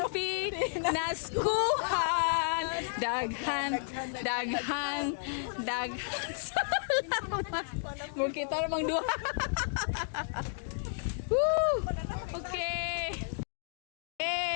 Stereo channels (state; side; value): silent; right; digital silence